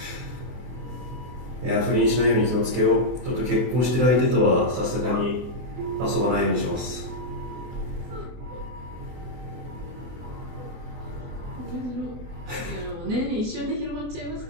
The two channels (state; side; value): late; left; 23 ms